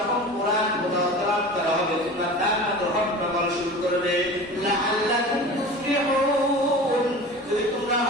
কোরআন তেলাওয়াত করা হবে তোমরা তার মধ্যে হট্টগোল শুরু করবে, লাআল্লাকুম তুফলিহুন, যদি তোমরা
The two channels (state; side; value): normal; both; correlation 0.36